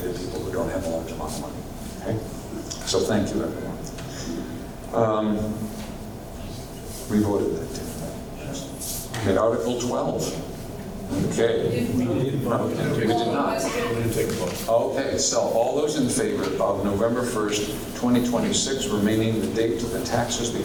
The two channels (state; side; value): identical; both; correlation 1.00